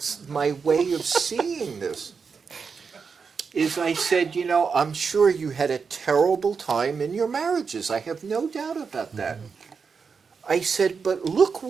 my way of seeing this. Is I said, you know, I'm sure you had a terrible time in your marriages. I have no doubt about that. I said, but look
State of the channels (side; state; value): left; quieter; 5.5 dB